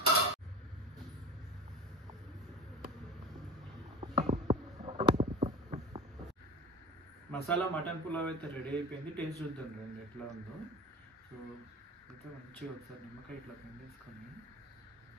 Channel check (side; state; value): both; normal; correlation 0.33